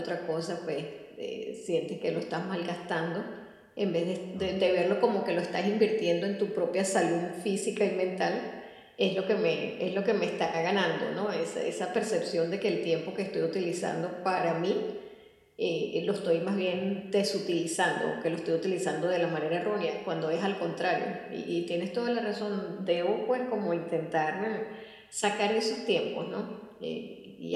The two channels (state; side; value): identical; both; correlation 1.00